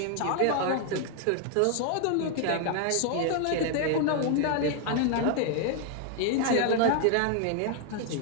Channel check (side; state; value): both; different; correlation 0.00